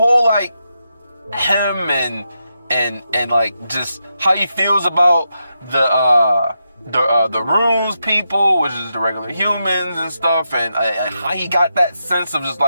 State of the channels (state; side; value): inverted; both; correlation -0.85